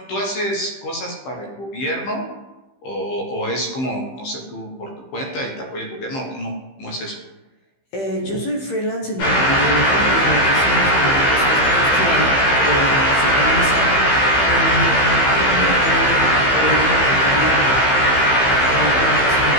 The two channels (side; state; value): right; late; 15 ms